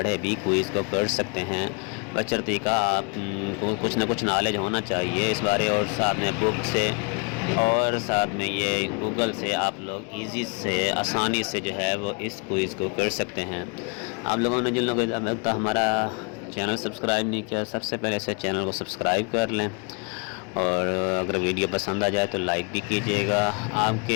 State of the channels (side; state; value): right; quieter; 35.2 dB